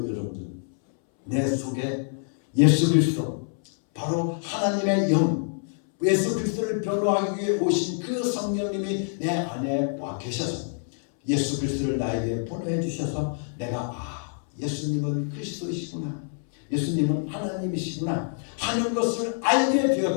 여러분들, 내 속에 예수 그리스도 바로 하나님의 영 예수 그리스도를 변호하기 위해 오신 그 성령님이 내 안에 와 계셔서 예수 그리스도를 나에게 보내해 주셔서 내가 예수님은 그리스도이시구나, 예수님은 하나님이시구나 하는 것을 알게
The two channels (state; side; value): silent; right; 61 dB below the other